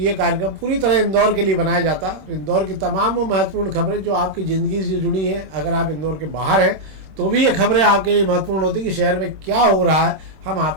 ये कार्यक्रम पूरी तरह इंदौर के लिए बनाया जाता है। इंदौर की तमाम वो महत्वपूर्ण खबरें जो आपकी ज़िंदगी से जुड़ी हैं, अगर आप इंदौर के बाहर हैं तो भी ये खबरें आपके लिए महत्वपूर्ण होती कि शहर में क्या हो रहा है, हम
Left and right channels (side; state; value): left; late; 26 ms